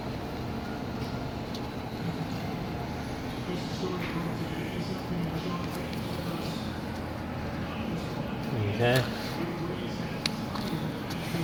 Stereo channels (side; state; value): both; identical; correlation 1.00